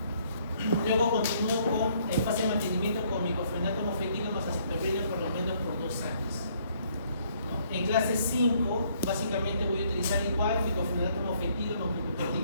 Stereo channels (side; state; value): both; inverted; correlation -0.66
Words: Luego continúo con en fase de mantenimiento con micofenato mofetilo más acitromicina por lo menos por 2 años. ¿No? En clase 5, básicamente voy a utilizar igual micofenato mofetilo más